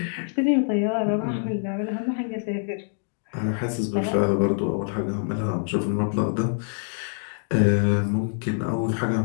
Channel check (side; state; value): right; silent; digital silence